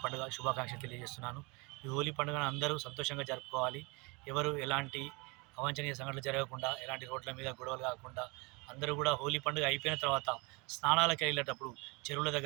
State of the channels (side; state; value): left; quieter; 28.3 dB